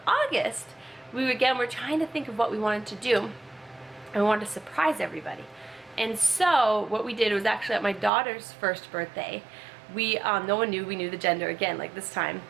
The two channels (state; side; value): drops out; left; at 8.1 s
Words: August, we were trying to think of what we wanted to do, and we wanted to surprise everybody. And so what we did was actually at my daughter's first birthday, we no one knew we knew the gender again, like this time,